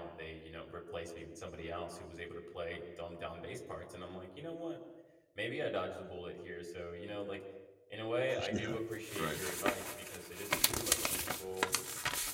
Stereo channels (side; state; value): both; identical; correlation 1.00